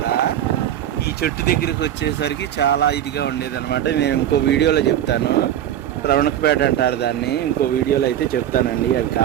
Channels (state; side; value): quieter; left; 11.1 dB